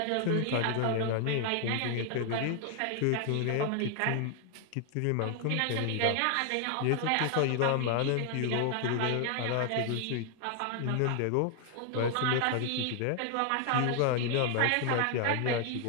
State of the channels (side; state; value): both; different; correlation 0.00